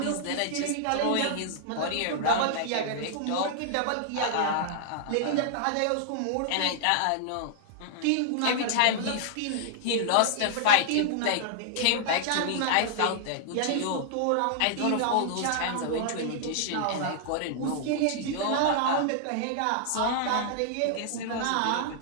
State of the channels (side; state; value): both; different; correlation -0.01